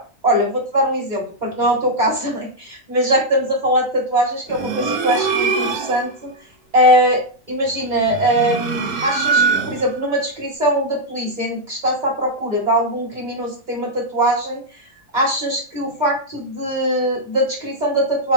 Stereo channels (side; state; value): both; normal; correlation -0.04